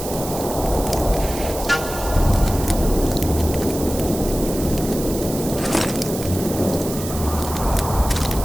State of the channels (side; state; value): right; noise; hiss, 10 dB below the sound